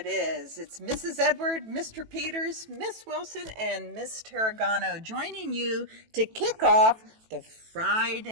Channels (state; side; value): late; left; 18 ms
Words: is. It's Mrs. Edward, Mr. Peters, Miss Wilson, and Miss Turregano joining you to kick off the